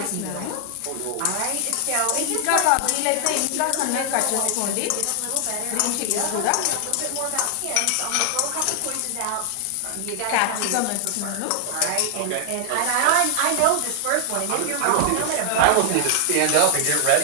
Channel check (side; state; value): both; different; correlation 0.00